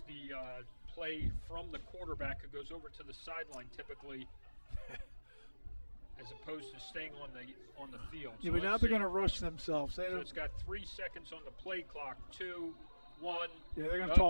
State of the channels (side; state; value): both; inverted; correlation -1.00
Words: the play from the quarterback who goes over to the sideline typically, as opposed to staying on the field. Yeah, but now they're going to rush themselves. So it's got 3 seconds on the play clock. 2, 1. Yeah, they're going to